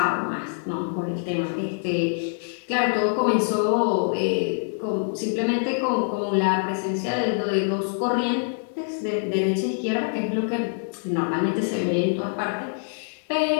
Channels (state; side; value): silent; right; 62 dB below the other